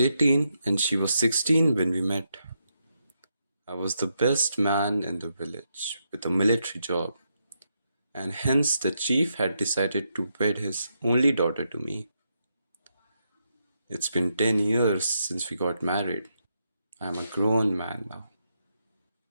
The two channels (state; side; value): inverted; both; correlation -0.81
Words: and she was 16 when we met. I was the best man in the village with a military job, and hence the chief had decided to wed his only daughter to me. It's been 10 years since we got married. I am a grown man now.